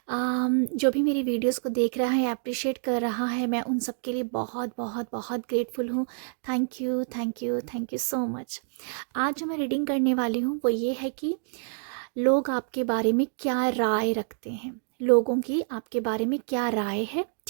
जो भी मेरी वीडियोस को देख रहा है, अप्रिशिएट कर रहा है, मैं उन सब के लिए बहुत बहुत बहुत ग्रेटफुल हूँ। Thank you, thank you, thank you so much. आज जो मैं रीडिंग करने वाली हूँ वो ये है कि लोग आपके बारे में क्या राय रखते हैं। लोगों की आपके बारे में क्या राय है,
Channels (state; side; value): silent; left; digital silence